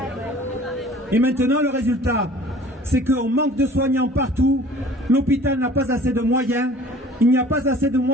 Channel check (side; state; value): both; normal; correlation 0.48